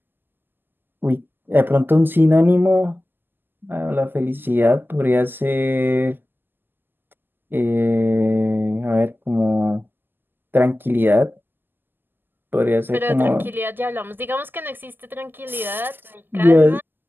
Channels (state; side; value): late; left; 0.093 ms